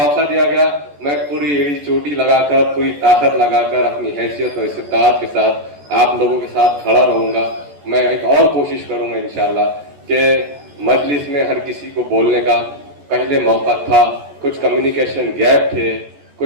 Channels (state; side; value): late; left; 14 ms